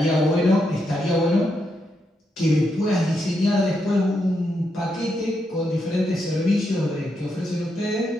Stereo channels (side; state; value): both; normal; correlation 0.81